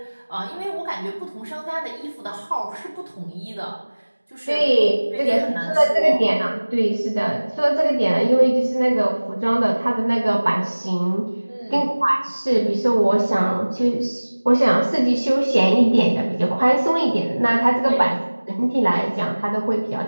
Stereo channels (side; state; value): both; inverted; correlation -1.00